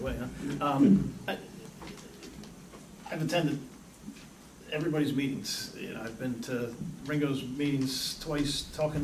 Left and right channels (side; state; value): both; identical; correlation 1.00